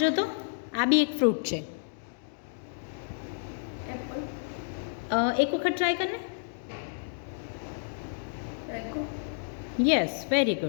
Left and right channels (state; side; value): silent; right; digital silence